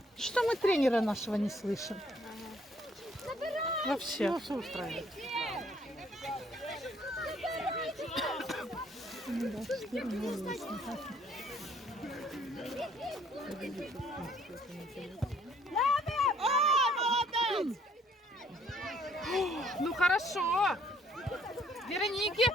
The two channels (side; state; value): both; normal; correlation 0.63